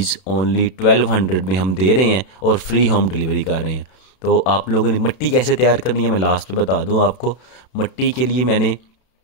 ओनली 1200 में हम दे रहे हैं और फ्री होम डिलीवरी कर रहे हैं। तो आप लोगों ने मिट्टी कैसे तैयार करनी है मैं लास्ट पे बता दूं आपको। मिट्टी के लिए मैंने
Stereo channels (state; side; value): late; right; 32 ms